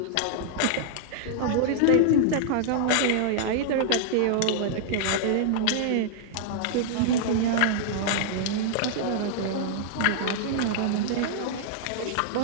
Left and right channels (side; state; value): both; different; correlation -0.01